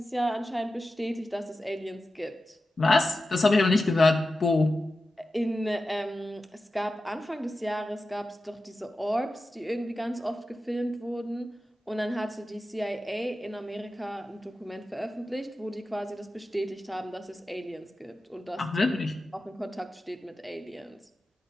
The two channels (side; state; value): both; normal; correlation 0.93